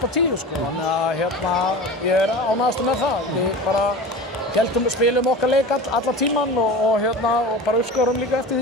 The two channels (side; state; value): both; normal; correlation 0.33